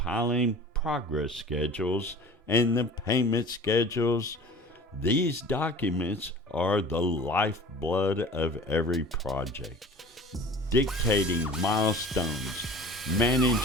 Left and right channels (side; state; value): both; normal; correlation 0.41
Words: progress schedules and the payment schedules. These documents are the lifeblood of every project, dictating milestones,